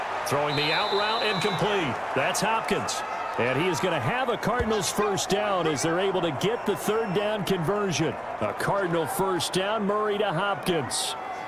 Throwing the out route, incomplete. That's Hopkins. And he is going to have a Cardinals first down as they're able to get the 3rd down conversion. A Cardinal first down, Murray to Hopkins.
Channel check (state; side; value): identical; both; correlation 1.00